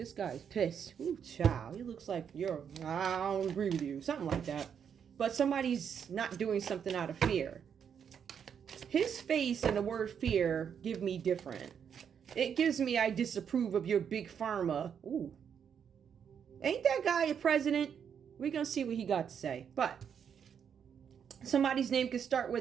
guy's pissed. Ooh, child. He looks like I don't agree with you. Something like that. But somebody's not doing something out of fear. His face and the word fear give me different. It gives me I disapprove of your big pharma. Ooh. Ain't that guy a president? We're going to see what he got to say. But somebody's name could start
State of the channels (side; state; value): left; quieter; 7.7 dB